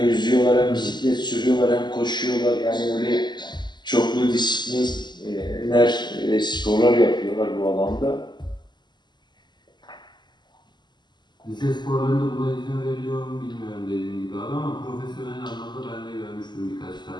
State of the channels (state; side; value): late; right; 0.21 ms